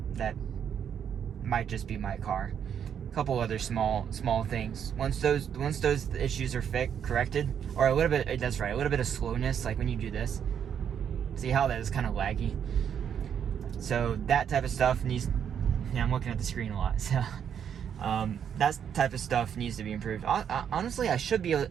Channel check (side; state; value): left; quieter; 8.3 dB